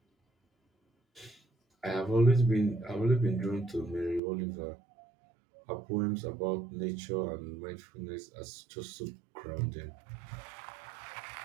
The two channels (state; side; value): drops out; left; at 4.2 s